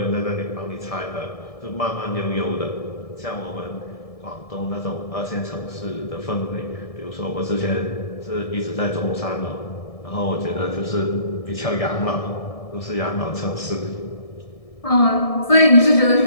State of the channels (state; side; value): late; right; 1.7 ms